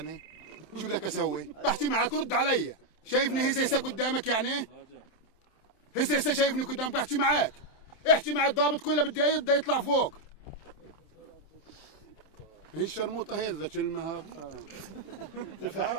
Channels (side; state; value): right; late; 27 ms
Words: شو بدك اسوي؟ بحكي معك رد علي. شايفني هسه قدامك يعني؟ هسه شايفني قدامك بحكي معك. احكي مع الضابط كله بدي يطلع فوق. هي الشرموطه هي ذا كلمه.